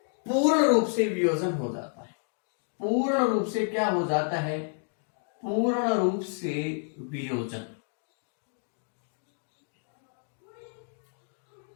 पूर्ण रूप से वियोजन हो जाता है। पूर्ण रूप से क्या हो जाता है? पूर्ण रूप से वियोजन।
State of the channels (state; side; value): silent; right; 58 dB below the other